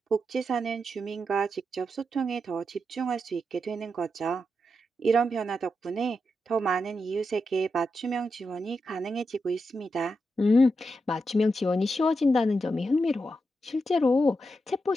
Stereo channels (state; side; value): normal; both; correlation 0.86